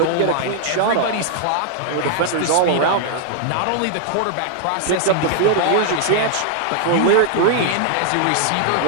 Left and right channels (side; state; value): both; different; correlation 0.00